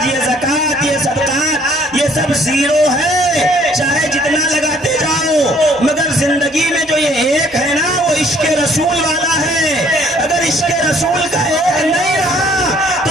یہ زکوٰۃ، یہ صدقات، یہ سب 0 ہے، چاہے جتنا لگاتے جاؤ، مگر زندگی میں جو یہ 1 ہے نا وہ عشق رسول والا ہے۔ اگر عشق رسول کا 1 نہیں رہا تو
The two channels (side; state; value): both; normal; correlation 0.60